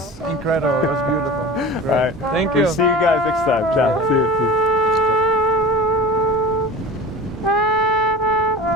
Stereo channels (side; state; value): both; normal; correlation 0.35